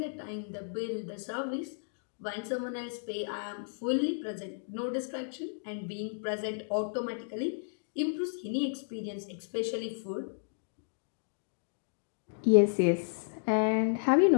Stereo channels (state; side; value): silent; right; digital silence